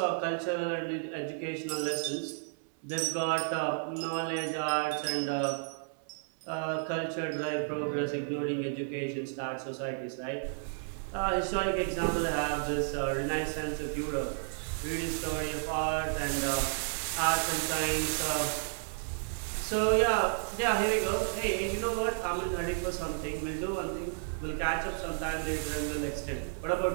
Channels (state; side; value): silent; left; digital silence